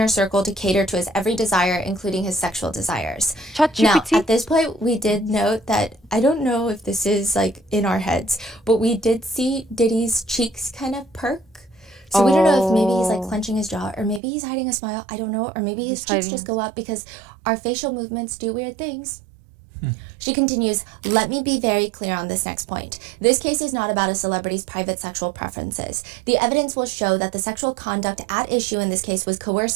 circle to cater to his every desire, including his sexual desires. Now, ChatGPT. at this point, we did note that, I don't know if this is like in our heads, but we did see Diddy's cheeks kind of perk. So we don't know if maybe he's like Oh, clenching his jaw, or maybe he's hiding a smile. I don't know. Or maybe his he's cheeks hiding just his. go up because our facial movements do weird things. She continues, let me be very clear on this next point. This case is not about a celebrity's private sexual preferences. The evidence will show that the sexual conduct at issue in this case was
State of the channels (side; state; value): left; drops out; at 14.2 s